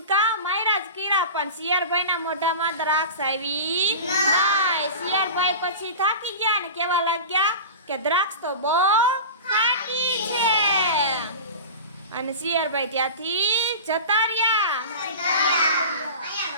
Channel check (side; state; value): both; inverted; correlation -0.31